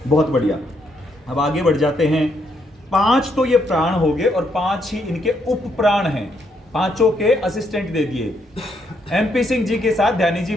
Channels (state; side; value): normal; both; correlation 0.75